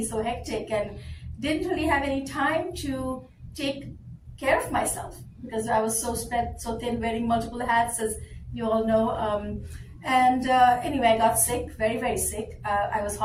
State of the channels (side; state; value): both; identical; correlation 1.00